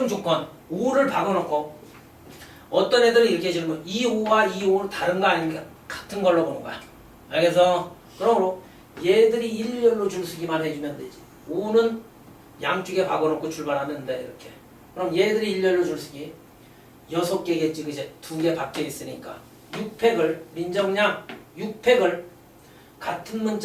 조건, O를 박아놓고 어떤 애들은 이렇게 질문, 이 O와 이 O는 다른 거 아닙니까? 같은 걸로 보는 거야. 알겠어? 그러므로 얘들이 일렬로 줄 서기만 해주면 되지. O는 양쪽에 박아놓고 출발하면 돼. 이렇게. 그럼 얘들이 일렬로 줄 서기 6개겠지. 그제 2개 박혀 있으니까 6팩을 민정량 6팩을 같은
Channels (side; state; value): both; identical; correlation 1.00